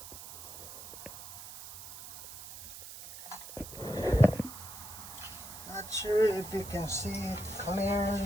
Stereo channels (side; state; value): right; noise; hiss, 12 dB below the sound